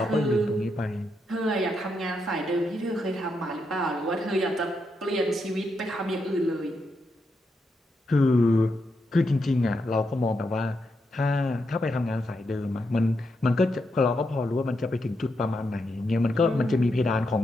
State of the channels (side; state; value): both; normal; correlation 0.83